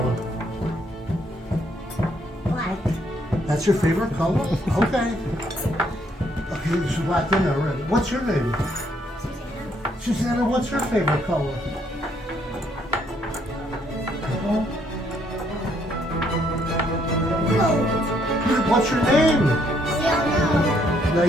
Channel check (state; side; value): normal; both; correlation 0.70